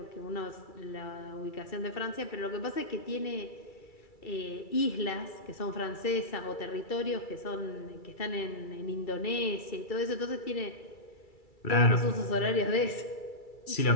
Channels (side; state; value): right; late; 2.3 ms